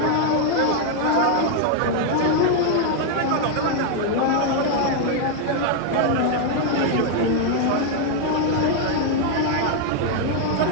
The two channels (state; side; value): different; both; correlation 0.00